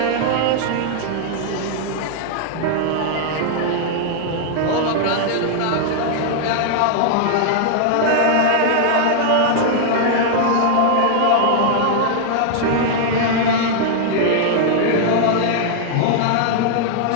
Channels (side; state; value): both; different; correlation -0.01